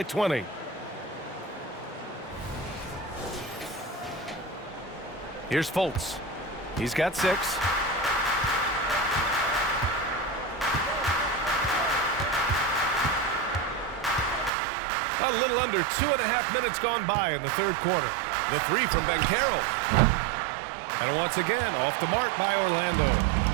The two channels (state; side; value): drops out; left; at 14.5 s